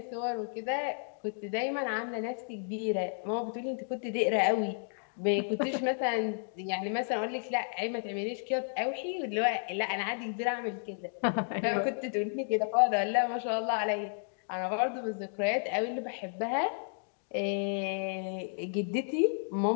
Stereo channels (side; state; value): right; silent; digital silence